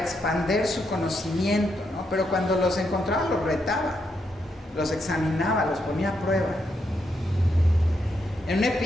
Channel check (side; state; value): both; normal; correlation 0.80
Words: su conocimiento, ¿no? Pero cuando los encontraba, los retaba, los examinaba, los ponía a prueba. En un